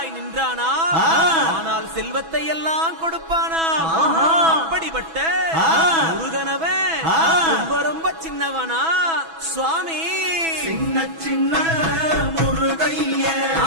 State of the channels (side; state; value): left; late; 6.1 ms